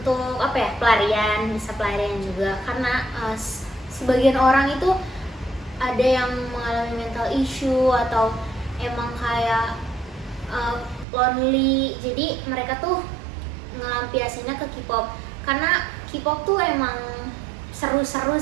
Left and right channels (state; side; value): drops out; left; at 11.1 s